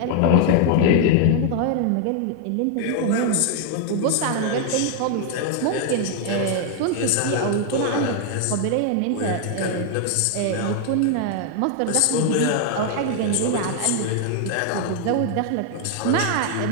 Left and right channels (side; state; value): both; different; correlation 0.00